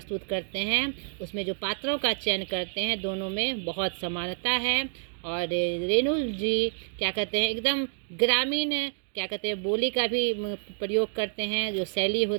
करते हैं, उसमें जो पात्रों का चयन करते हैं, दोनों में बहुत समानता है। और रेणु जी क्या कहते हैं, एकदम ग्रामीण क्या कहते हैं बोली का भी प्रयोग करते हैं। जो शैली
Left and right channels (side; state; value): left; silent; 59 dB below the other